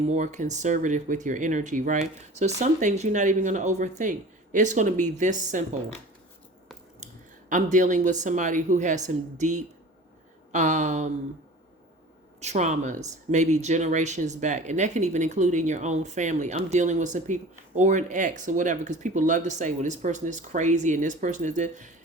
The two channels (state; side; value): normal; both; correlation 0.40